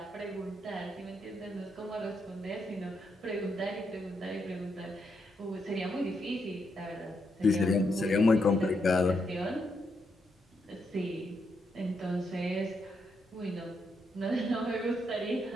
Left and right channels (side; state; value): both; normal; correlation 0.80